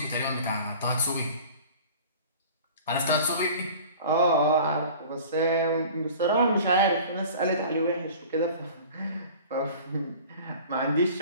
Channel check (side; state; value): both; inverted; correlation -0.43